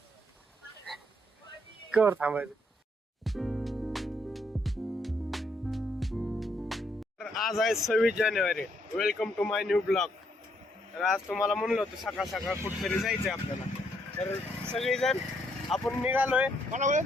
कर थांबायचं. आज आहे 26 जानेवारी. Welcome to my new blog. तर आज तुम्हाला म्हणलं होतं सकाळ सकाळ कुठेतरी जायचंय आपल्याला. तर सगळेजण आपण निघालोय. मला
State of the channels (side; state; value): both; normal; correlation 0.72